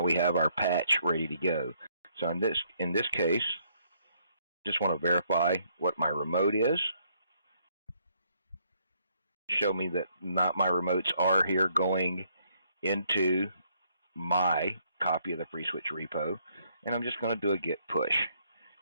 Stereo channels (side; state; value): both; inverted; correlation -0.69